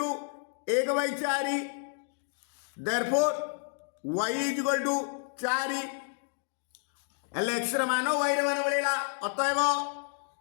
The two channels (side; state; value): right; silent; 57 dB below the other